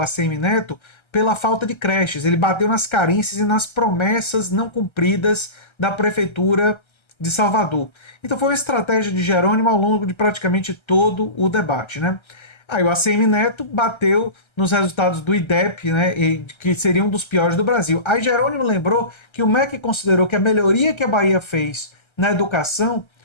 ACM Neto pela falta de creches. Ele bateu nas carências e nas promessas não cumpridas da prefeitura de Salvador. Então foi uma estratégia de Jerônimo ao longo de praticamente todo o debate, né? Aí o ACM Neto bateu nos resultados do IDEP, né, que seria um dos piores do Brasil. Aí Jerônimo lembrou que o MEC considerou que a melhoria que a Bahia fez na educação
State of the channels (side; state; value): right; late; 1.3 ms